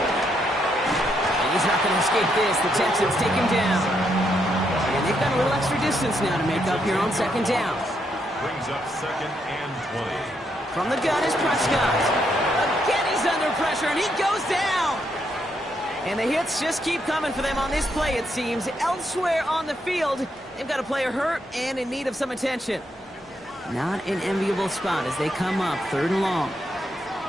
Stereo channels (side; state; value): both; normal; correlation 0.77